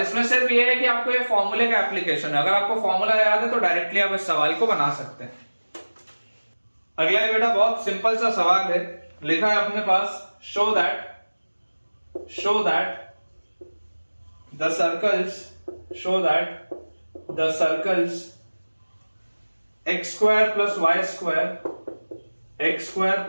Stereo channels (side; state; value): both; inverted; correlation -1.00